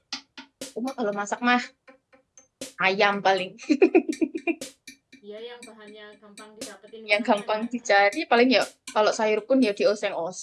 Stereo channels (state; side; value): identical; both; correlation 1.00